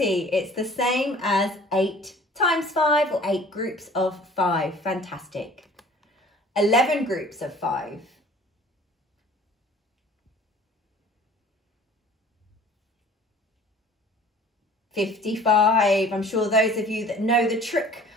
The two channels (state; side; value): normal; both; correlation 0.49